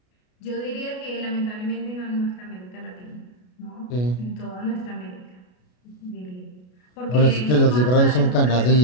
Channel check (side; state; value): right; late; 33 ms